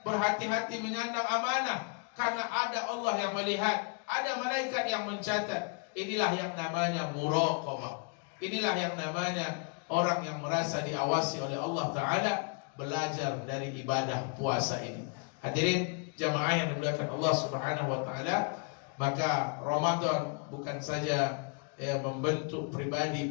berhati-hati menyandang amanah, karena ada Allah yang melihat, ada malaikat yang mencatat. Inilah yang namanya muraqabah. Inilah yang namanya orang yang merasa diawasi oleh Allah Ta'ala, belajar dari ibadah puasa ini. Hadirin jamaah yang dimuliakan Allah Subhanahu Wa Ta'ala, maka Ramadan bukan saja membentuk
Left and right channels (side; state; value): right; quieter; 36.7 dB